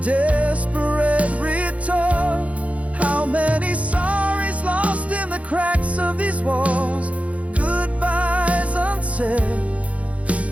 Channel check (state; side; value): late; left; 0.065 ms